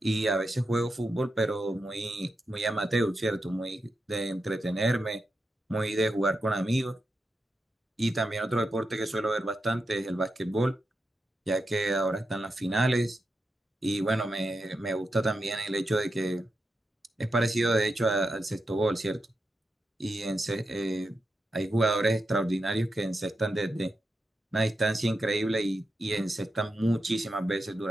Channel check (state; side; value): normal; both; correlation 0.87